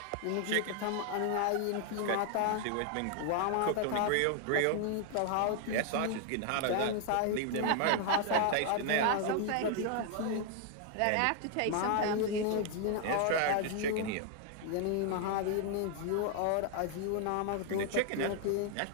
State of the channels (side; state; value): both; different; correlation 0.00